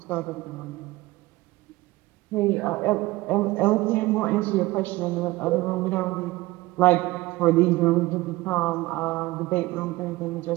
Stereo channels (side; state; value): left; quieter; 19.5 dB